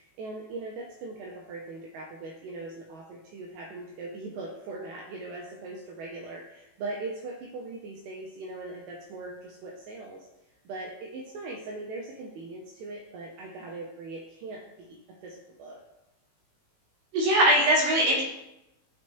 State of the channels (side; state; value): left; late; 19 ms